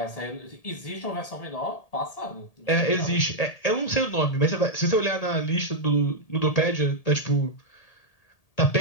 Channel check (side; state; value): right; late; 1.8 ms